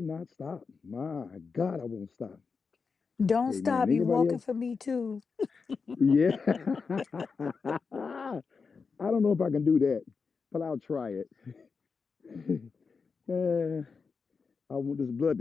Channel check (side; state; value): right; quieter; 5.1 dB